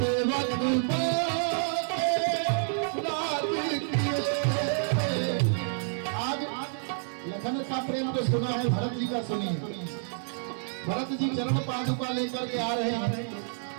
लखन का प्रेम तो सुना है, भरत जी का सुनिए। भरत जी चरण पादुका लेकर के आ रहे हैं।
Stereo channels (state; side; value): silent; left; 59 dB below the other